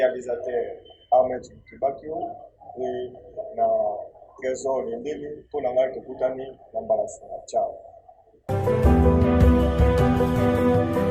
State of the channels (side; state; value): both; identical; correlation 1.00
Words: Ahmed Kibakio et na Trésor Lendele pour na ngai tokutani na mbalasi na ciao.